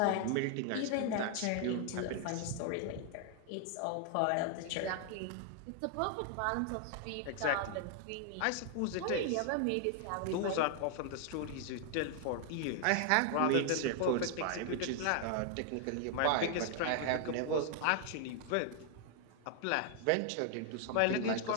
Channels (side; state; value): both; different; correlation 0.00